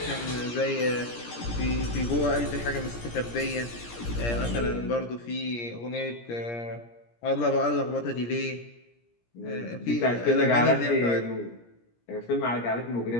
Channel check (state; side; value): late; right; 17 ms